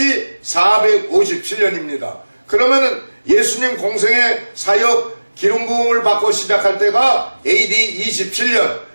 457년입니다. 그러면은 예수님 공생의 사역 기름 부음을 받고 시작할 때가 AD 27년,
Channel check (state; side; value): inverted; both; correlation -1.00